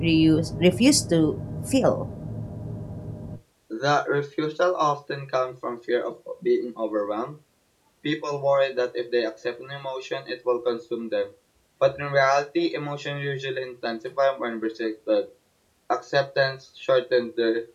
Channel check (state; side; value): identical; both; correlation 1.00